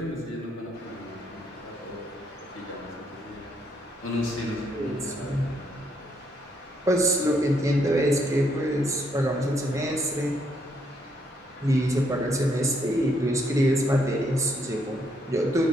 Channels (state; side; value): normal; both; correlation 0.73